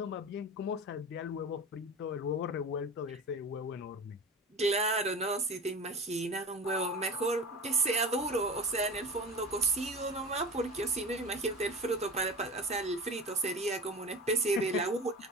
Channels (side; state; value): both; normal; correlation 0.32